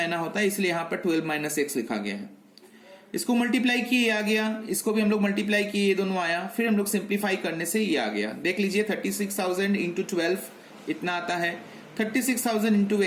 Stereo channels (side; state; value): both; identical; correlation 1.00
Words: होता है, इसलिए यहां पर 12 माइनस X लिखा गया है। इसको मल्टीप्लाई किए आ गया, इसको भी हम लोग मल्टीप्लाई किए, ये दोनों आया, फिर हम लोग सिंप्लीफाई करने से ये आ गया। देख लीजिए 36,000 इंटू 12 इतना आता है, 36,000 इंटू